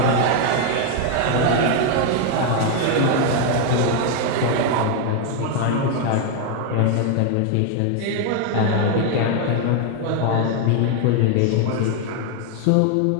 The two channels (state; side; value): different; both; correlation 0.01